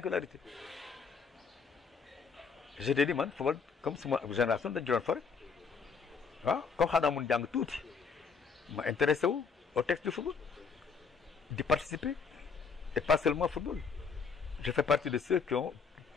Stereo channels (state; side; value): quieter; right; 5.5 dB